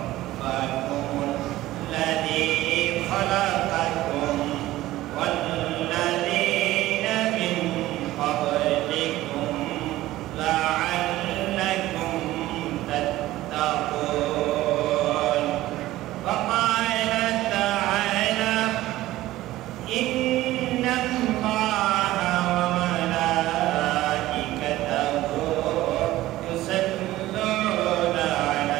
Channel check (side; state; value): left; quieter; 16.1 dB